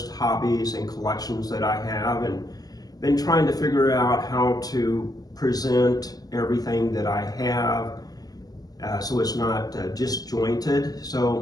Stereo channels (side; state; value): right; late; 0.19 ms